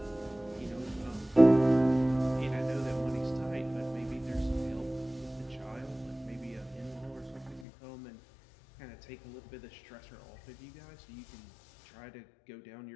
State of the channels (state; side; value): drops out; right; at 7.7 s